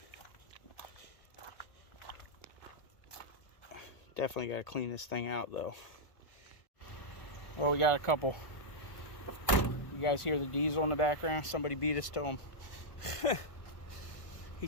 Definitely got to clean this thing out though. Well, we got a couple. You guys hear the diesel in the background? Somebody beat us to him. He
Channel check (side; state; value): right; late; 1.4 ms